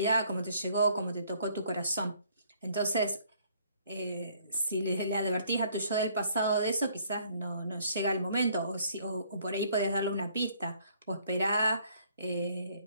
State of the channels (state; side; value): inverted; both; correlation -0.63